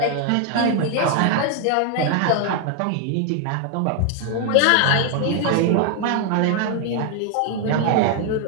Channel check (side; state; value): both; different; correlation 0.00